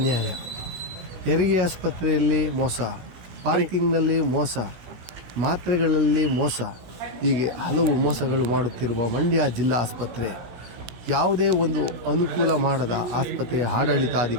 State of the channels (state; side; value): late; left; 16 ms